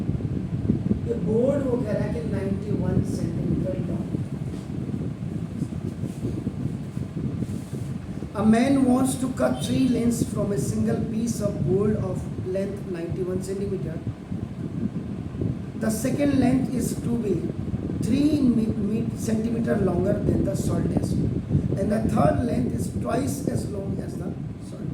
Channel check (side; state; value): both; identical; correlation 1.00